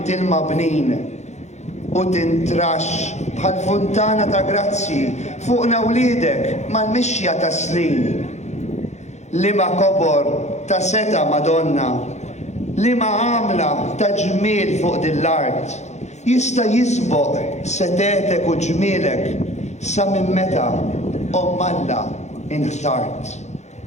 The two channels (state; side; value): late; right; 0.33 ms